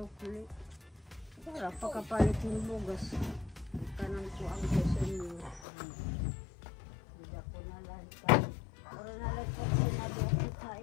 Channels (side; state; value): right; drops out; at 5.7 s